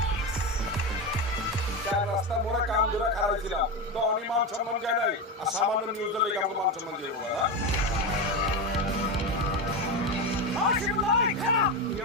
রাস্তা মোড়া কাম ধরে খারাপ ছিলাম তো আমি মান সম্মান যায় নাই আর সামান্য নিউজ হলে কেমন মান সম্মান যাবো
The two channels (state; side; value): normal; both; correlation 0.16